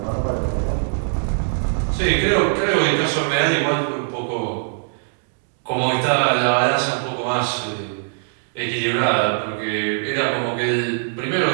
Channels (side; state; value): left; silent; 65 dB below the other